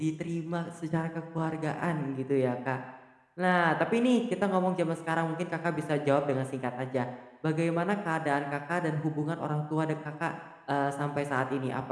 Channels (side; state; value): both; identical; correlation 1.00